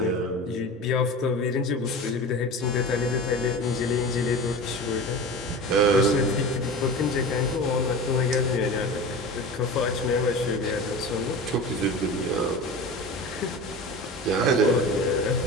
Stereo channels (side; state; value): both; normal; correlation 0.32